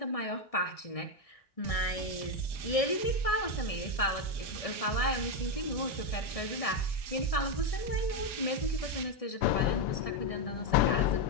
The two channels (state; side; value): late; right; 1.7 ms